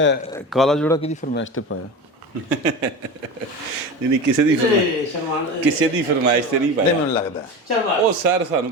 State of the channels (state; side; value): normal; both; correlation 0.28